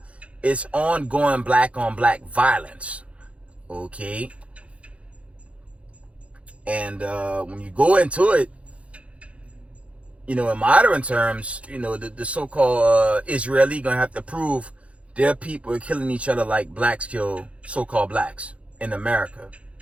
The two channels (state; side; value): late; left; 0.063 ms